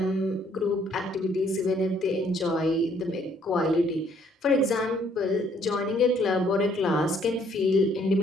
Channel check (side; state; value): both; normal; correlation 0.65